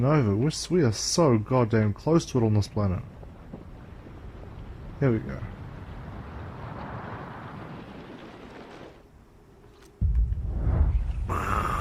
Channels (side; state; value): both; identical; correlation 1.00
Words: we are so goddamn close to it on this planet. Here we go.